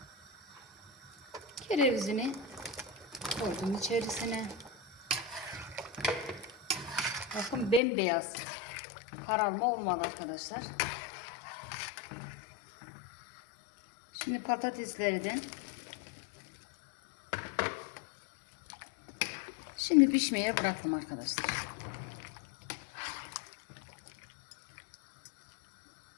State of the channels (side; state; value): right; drops out; at 7.8 s